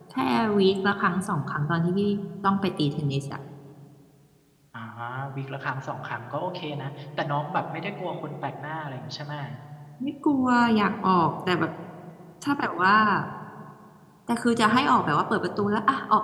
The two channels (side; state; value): both; identical; correlation 1.00